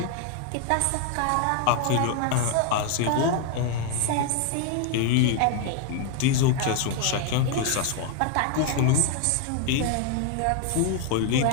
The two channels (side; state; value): both; different; correlation 0.00